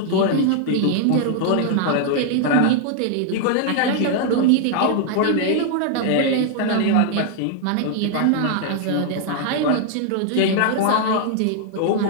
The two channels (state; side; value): different; both; correlation 0.00